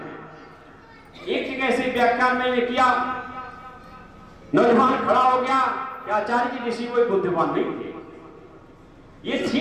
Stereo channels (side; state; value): both; identical; correlation 1.00